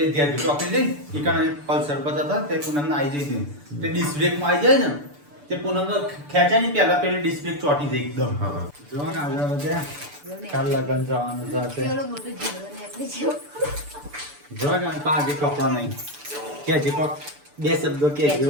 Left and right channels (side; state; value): left; late; 6.9 ms